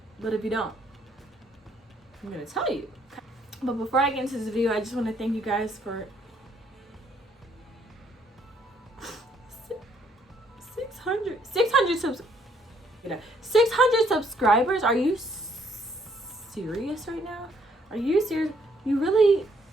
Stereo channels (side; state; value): both; normal; correlation 0.67